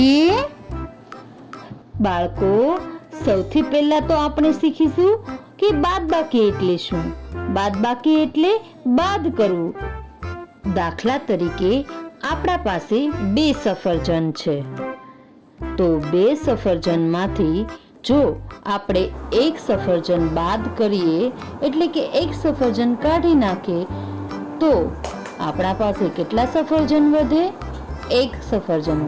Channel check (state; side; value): identical; both; correlation 1.00